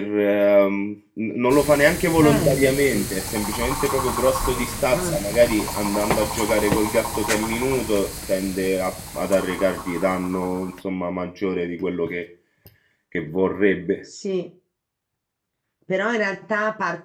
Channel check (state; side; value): identical; both; correlation 1.00